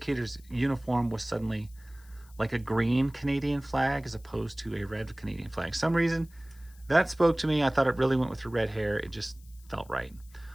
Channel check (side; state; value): left; noise; hiss, 27 dB below the sound